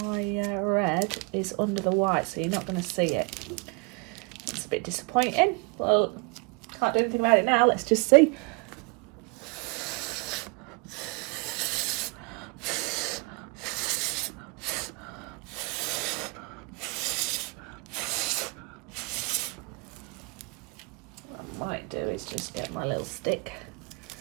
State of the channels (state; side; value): quieter; left; 30.9 dB